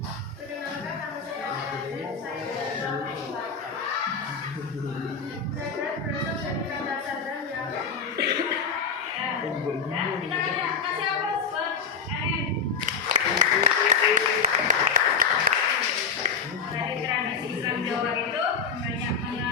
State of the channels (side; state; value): right; quieter; 5.7 dB